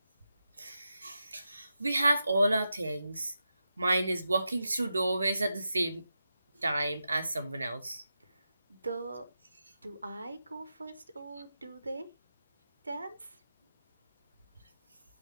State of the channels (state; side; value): inverted; both; correlation -0.89